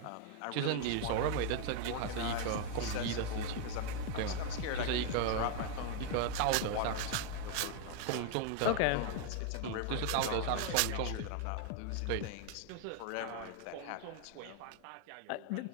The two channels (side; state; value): both; different; correlation 0.00